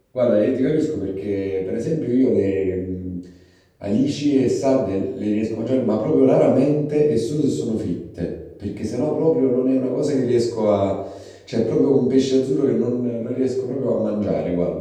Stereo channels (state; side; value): identical; both; correlation 1.00